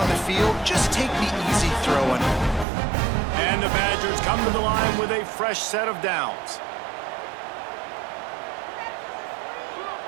the field. Just take the easy throw on him. And the Badgers come to the line with a fresh set of downs.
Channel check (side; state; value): left; drops out; at 2.7 s